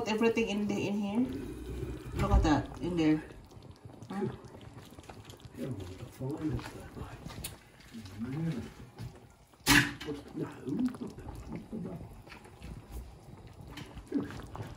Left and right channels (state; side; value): identical; both; correlation 1.00